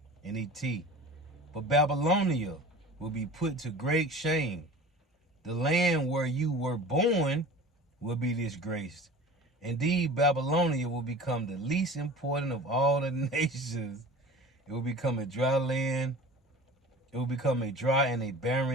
NET. But Babylonia will be put to great shame. The land where you were born will be disgraced. Indeed, Babylonia will become the least important of all the nations. It will become a dry land. It will become a dry and a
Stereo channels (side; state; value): both; normal; correlation 0.39